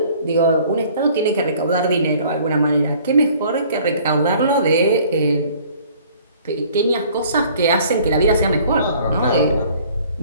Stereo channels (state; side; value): inverted; both; correlation -0.54